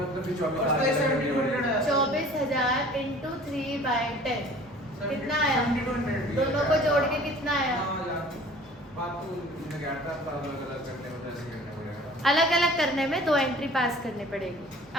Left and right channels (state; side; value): normal; both; correlation 0.47